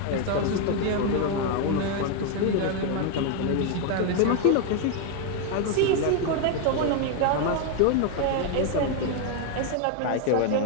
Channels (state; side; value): different; both; correlation 0.01